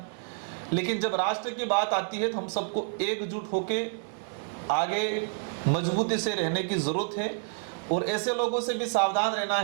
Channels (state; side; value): silent; left; digital silence